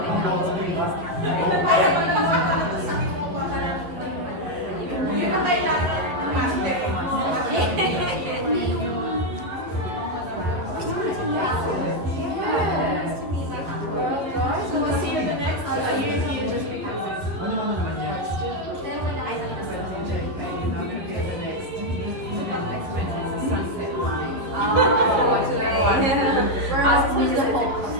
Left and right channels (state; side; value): late; left; 11 ms